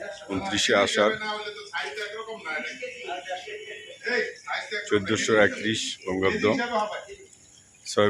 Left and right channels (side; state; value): both; identical; correlation 1.00